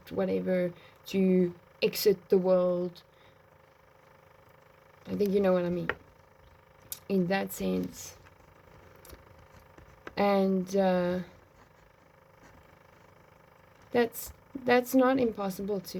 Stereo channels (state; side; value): identical; both; correlation 1.00